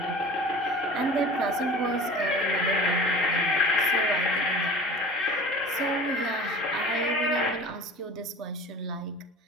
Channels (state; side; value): normal; both; correlation 0.39